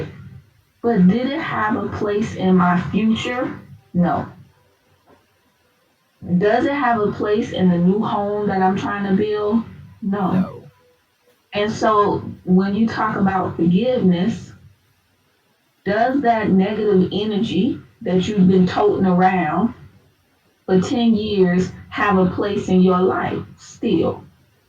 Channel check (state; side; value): identical; both; correlation 1.00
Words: But did it have a place in my future? No. Does it have a place in the new home that I'm trying to build? No. No. And so when you talk about forgiveness, does that negative energy that you've been toting around for 10 years have a place in your life still?